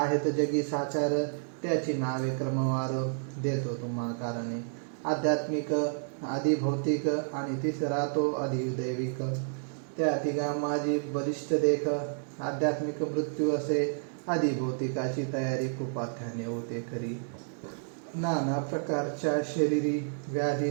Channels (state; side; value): silent; left; digital silence